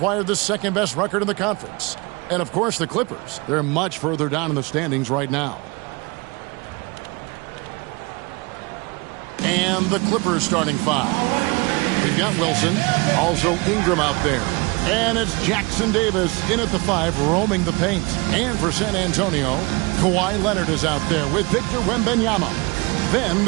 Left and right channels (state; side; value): quieter; left; 26.5 dB